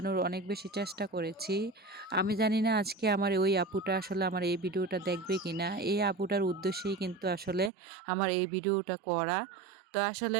অনেক বেশি চেষ্টা করেছি। আমি জানি না আজকে আমার ওই আপুটা আসলে আমার এই ভিডিওটা দেখবে কিনা। এই আপুটার উদ্দেশ্যেই কিন্তু আসলে আমার এই ভিডিওটা করা। তো আসলে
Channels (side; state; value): left; drops out; at 7.7 s